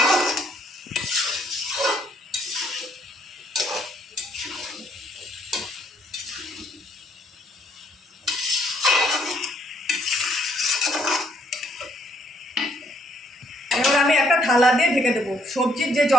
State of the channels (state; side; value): normal; both; correlation 0.68